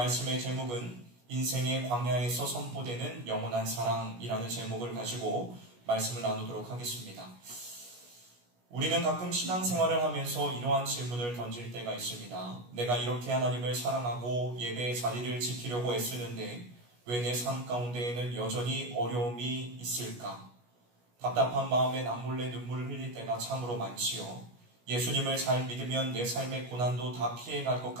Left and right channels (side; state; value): left; late; 17 ms